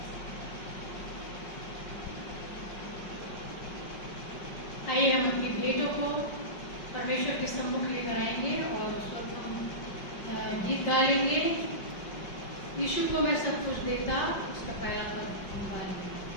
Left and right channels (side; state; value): right; late; 5.3 ms